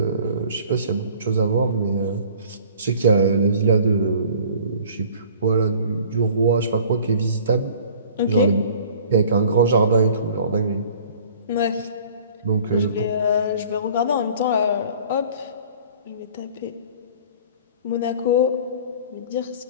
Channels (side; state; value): both; inverted; correlation -0.49